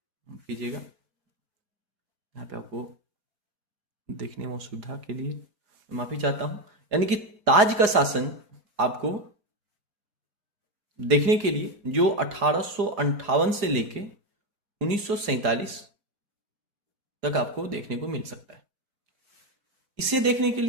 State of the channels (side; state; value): left; late; 4.8 ms